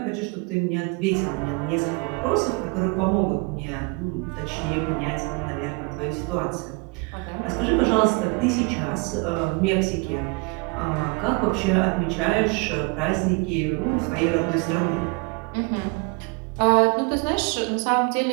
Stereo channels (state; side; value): quieter; left; 29.7 dB